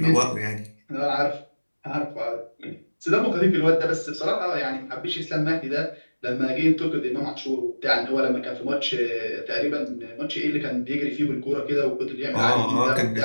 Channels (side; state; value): both; inverted; correlation -1.00